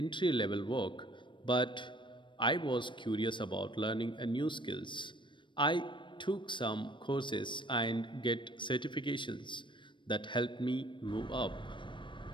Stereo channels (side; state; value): right; late; 0.23 ms